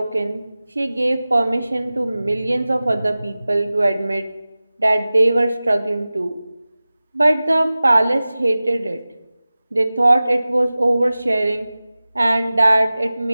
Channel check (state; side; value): inverted; both; correlation -0.97